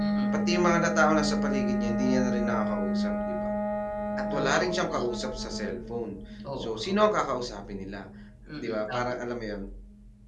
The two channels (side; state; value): both; identical; correlation 1.00